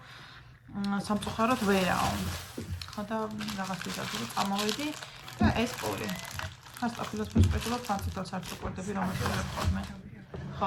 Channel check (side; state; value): both; identical; correlation 1.00